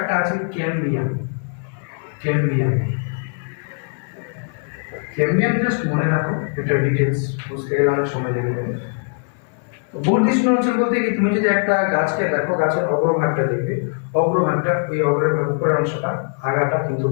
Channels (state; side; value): silent; right; 58 dB below the other